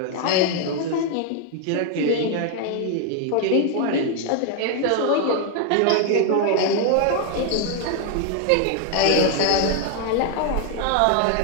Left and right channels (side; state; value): both; different; correlation 0.00